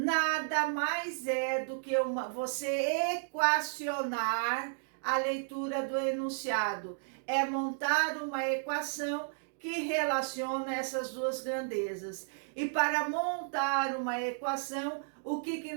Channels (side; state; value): left; silent; digital silence